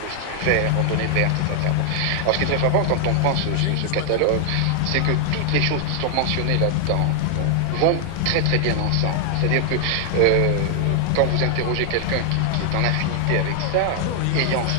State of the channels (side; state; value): both; different; correlation 0.00